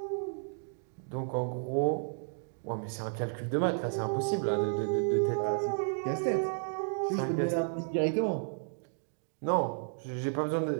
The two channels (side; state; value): left; silent; digital silence